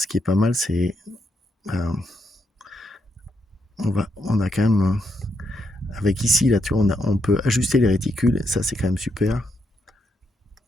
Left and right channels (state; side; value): normal; both; correlation 0.80